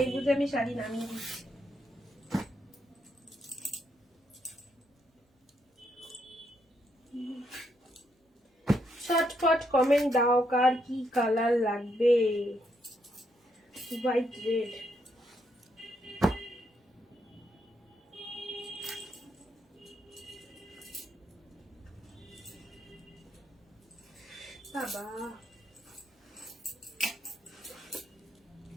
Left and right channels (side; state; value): both; normal; correlation 0.77